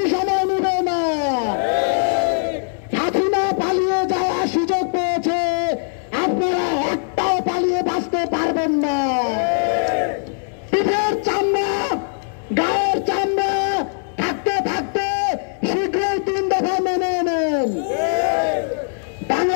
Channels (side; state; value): right; silent; digital silence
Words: সময় নেবে না। হাসিনা পালিয়ে যাওয়ার সুযোগ পেয়েছে, আপনারা একটাও পালিয়ে বাঁচতে পারবেন না। পিঠের চামড়া, গায়ের চামড়া থাকতে থাকতে শীঘ্রই 3 দফা মেনে নেন।